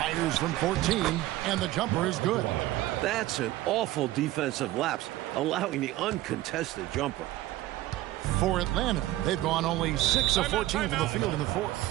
from 14, and the jumper is good. That's an awful defensive lapse, allowing the uncontested jumper. For Atlanta, they've gone only 6 of 14 from the field in the fourth.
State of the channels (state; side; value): quieter; left; 16.0 dB